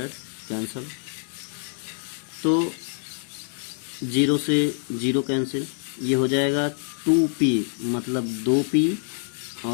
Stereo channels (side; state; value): right; silent; digital silence